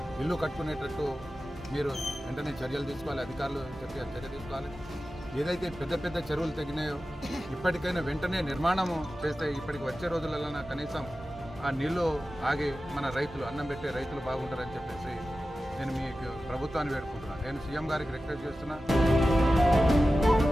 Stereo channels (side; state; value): both; normal; correlation 0.94